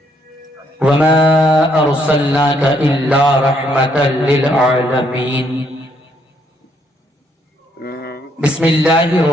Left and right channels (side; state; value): both; normal; correlation 0.71